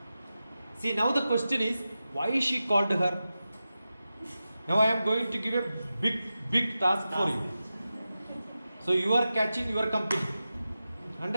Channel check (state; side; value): inverted; both; correlation -0.93